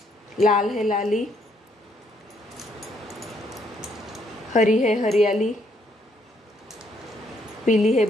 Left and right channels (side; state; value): both; normal; correlation 0.71